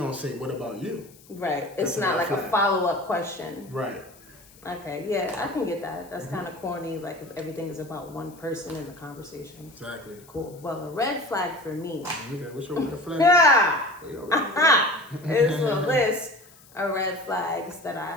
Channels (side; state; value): left; noise; hiss, 25 dB below the sound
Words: say, what about you? Right. It's not like a follow-up question. Right. Okay, yeah, I can get that. That's kind of corny, like if everything is about one person in the conversation. Exactly. Cool. Well, a red flag for me. Okay, what's your red flag? Yeah. It's a list of red flags that